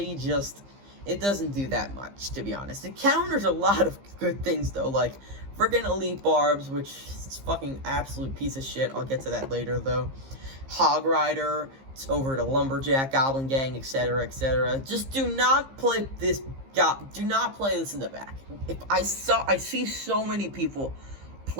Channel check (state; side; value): late; left; 15 ms